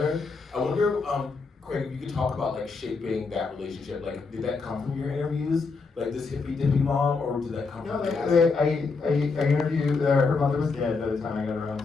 I wonder, Craig, if you could talk about like shaping that relationship. Like, did that come from your interviews? Like this hippy-dippy mom, or did that come No, from I interviewed, her mother was dead by the time I got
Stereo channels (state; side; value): quieter; right; 4.4 dB